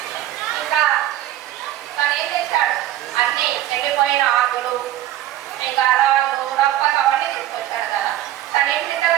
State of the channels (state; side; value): quieter; left; 13.4 dB